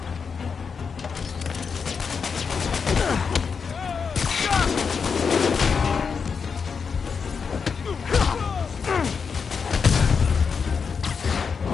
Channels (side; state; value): right; quieter; 5.8 dB